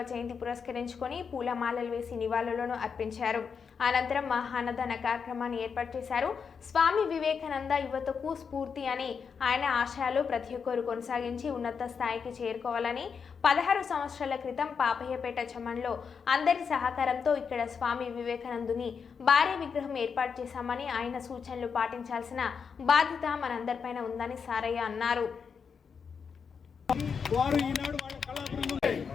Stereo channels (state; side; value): quieter; right; 6.1 dB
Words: జయంతి పురస్కరించుకొని పూలమాలలు వేసి నివాళులను అర్పించారు. అనంతరం మహాన్నదాన కార్యక్రమాన్ని ఏర్పాటు చేశారు. స్వామి వివేకానంద యువతకు స్ఫూర్తి అని, ఆయన ఆశయాలు ప్రతి ఒక్కరు కొనసాగించి ఉన్నత స్థాయికి చేరుకోవాలని 16 సంవత్సరాల క్రితం పాపయ్యపేట చెమన్లో అందరి సహకారంతో ఇక్కడ స్వామి వివేకానందుని భారీ విగ్రహం ఏర్పాటు చేశామని, ఆయన సూచనలు పాటించాల్సిన బాధ్యత మనందరిపైన ఉందని సారయ్య అన్నారు.